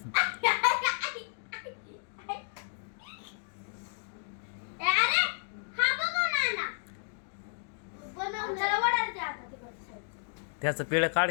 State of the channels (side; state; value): right; silent; digital silence